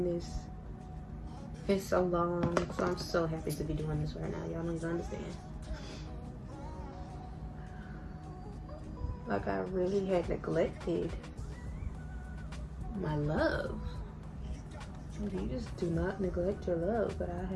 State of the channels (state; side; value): identical; both; correlation 1.00